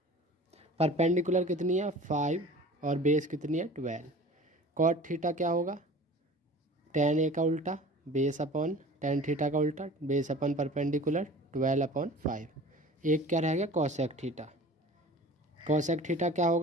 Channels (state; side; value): normal; both; correlation 0.42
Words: परपेंडिकुलर कितनी है 5 और बेस कितनी है 12। कॉट थीटा क्या होगा, tan A का उल्टा बेस अपॉन tan थीटा का उल्टा बेस अपॉन परपेंडिकुलर 12 अपॉन 5। एक क्या रह गया कोसेक थीटा। कोसेक थीटा क्या